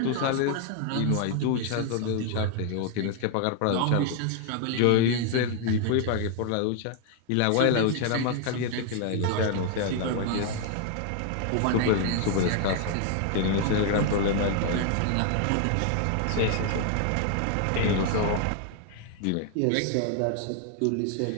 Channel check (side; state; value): both; different; correlation 0.00